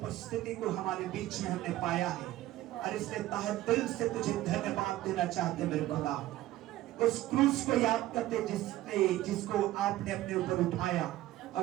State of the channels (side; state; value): left; quieter; 15.4 dB